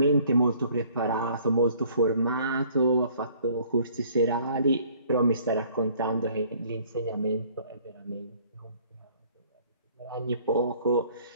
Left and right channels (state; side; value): inverted; both; correlation -0.57